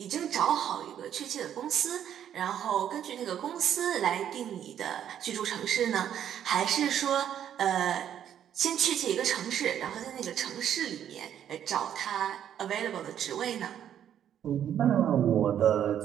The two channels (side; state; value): left; quieter; 9.9 dB